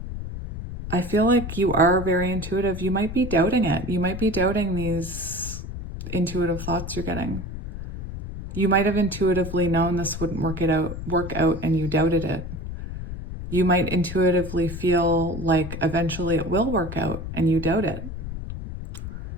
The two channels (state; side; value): noise; left; rumble, 8 dB below the sound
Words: you are very intuitive. You might be doubting it. You might be doubting these intuitive thoughts you're getting. You might have intuitively known this wouldn't work out and you doubted it. You might intuitively feel like eventually it will work out and you doubt it.